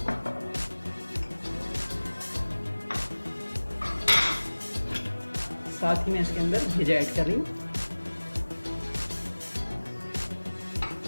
साथ ही मैं इसके अंदर भेजा ऐड कर रही हूँ।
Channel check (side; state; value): both; inverted; correlation -1.00